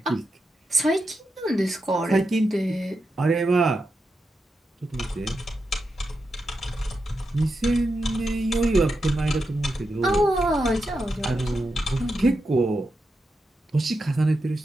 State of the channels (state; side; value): normal; both; correlation 0.87